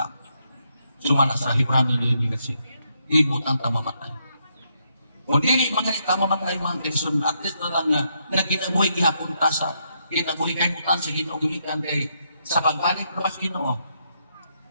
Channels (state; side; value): inverted; both; correlation -0.77